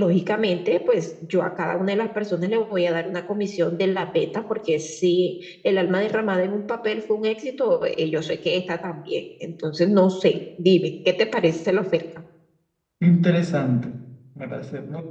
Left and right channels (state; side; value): identical; both; correlation 1.00